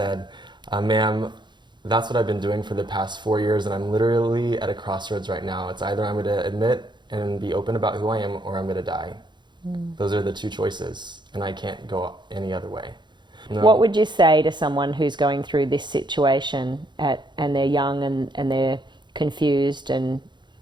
ma'am, that's what I've been doing for the past 4 years, and I'm literally at a crossroads right now. It's either I'm going to admit and be open about who I am, or I'm going to die. Those are the two choices, and I can't go any other way. No. What would you say to someone who's going through this situation and they're young and they're confused and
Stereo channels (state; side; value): late; left; 0.22 ms